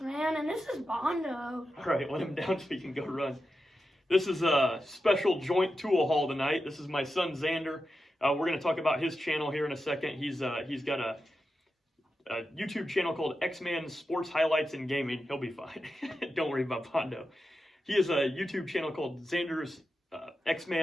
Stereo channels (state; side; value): normal; both; correlation 0.90